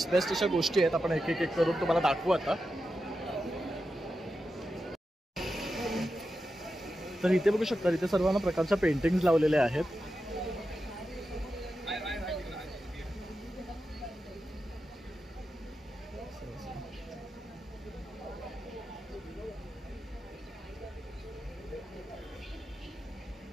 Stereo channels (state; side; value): normal; both; correlation 0.90